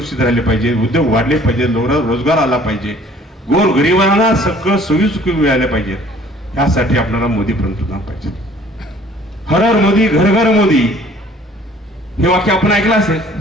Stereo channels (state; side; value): normal; both; correlation 0.54